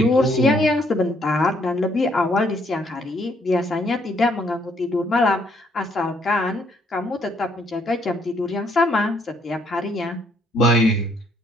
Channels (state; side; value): normal; both; correlation 0.69